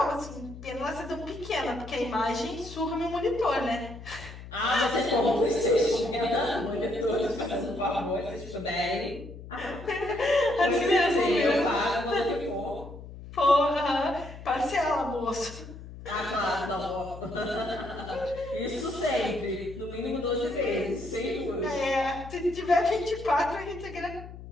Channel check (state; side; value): noise; left; hum, 14 dB below the sound